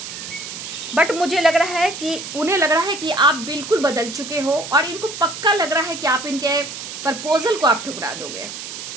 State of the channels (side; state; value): right; noise; hiss, 9 dB below the sound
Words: बट मुझे लग रहा है कि उन्हें लग रहा है कि आप बिल्कुल बदल चुके हो और इनको पक्का लग रहा है कि आप इनके प्रपोजल को आप ठुकरा दोगे,